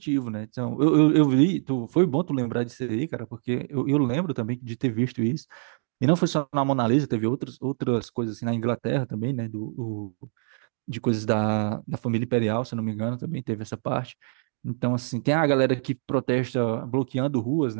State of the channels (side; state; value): left; silent; digital silence